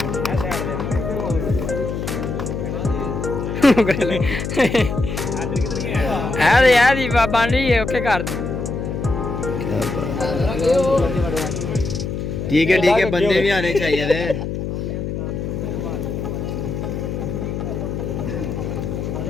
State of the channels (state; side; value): noise; left; hum, 4 dB below the sound